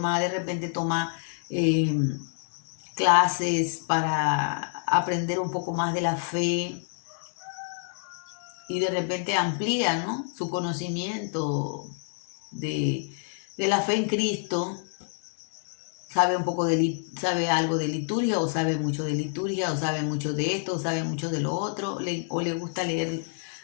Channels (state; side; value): silent; right; 59 dB below the other